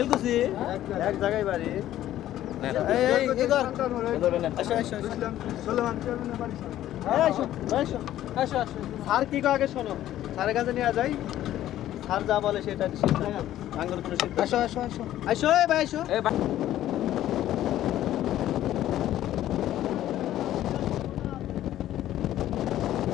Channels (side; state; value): right; quieter; 13.0 dB